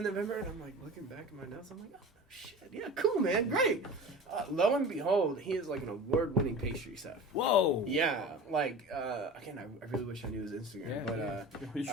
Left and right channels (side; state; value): both; normal; correlation 0.35